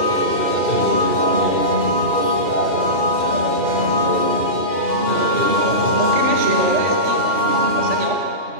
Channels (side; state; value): left; late; 2.8 ms